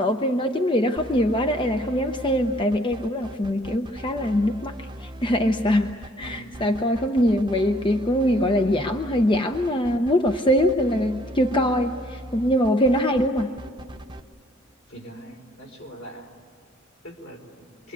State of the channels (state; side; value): normal; both; correlation 0.61